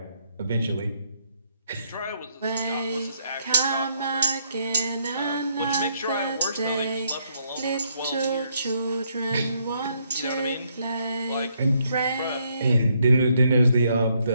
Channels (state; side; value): inverted; both; correlation -0.73